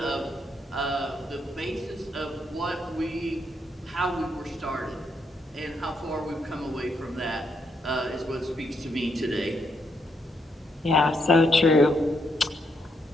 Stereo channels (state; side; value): normal; both; correlation 0.77